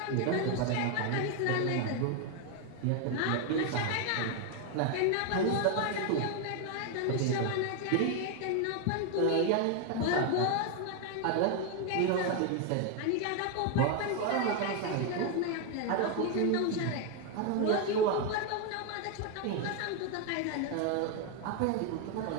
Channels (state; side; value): different; both; correlation 0.01